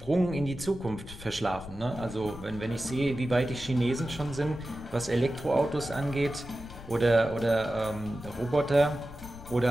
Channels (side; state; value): left; noise; rumble, 15 dB below the sound